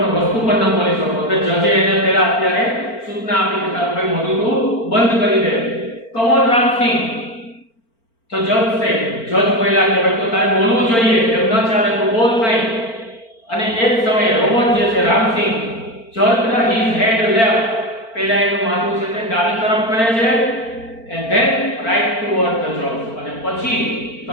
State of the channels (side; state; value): right; late; 4.4 ms